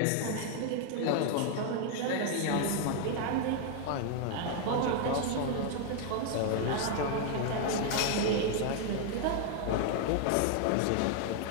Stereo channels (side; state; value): both; different; correlation 0.00